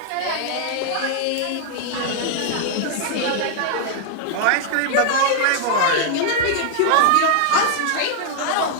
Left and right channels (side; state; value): both; different; correlation -0.01